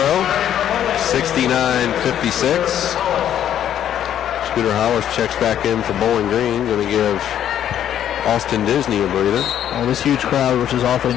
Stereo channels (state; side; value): quieter; right; 10.4 dB